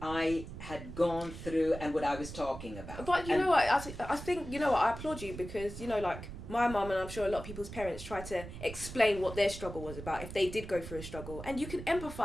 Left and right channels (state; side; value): noise; right; rumble, 11 dB below the sound